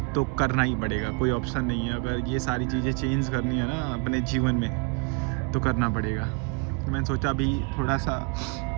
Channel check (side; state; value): left; quieter; 30.2 dB